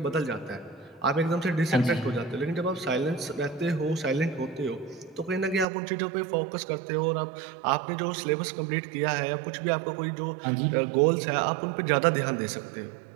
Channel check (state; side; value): drops out; left; at 5.7 s